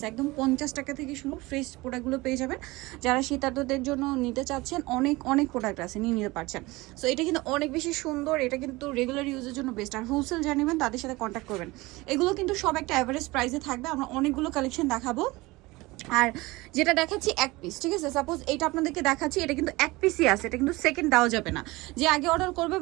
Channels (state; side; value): quieter; left; 21.5 dB